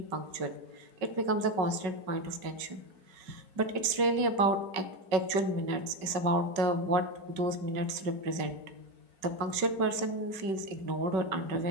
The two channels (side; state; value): left; late; 5.3 ms